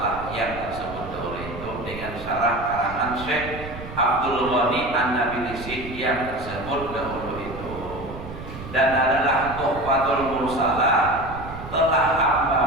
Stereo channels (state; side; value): noise; right; rumble, 12 dB below the sound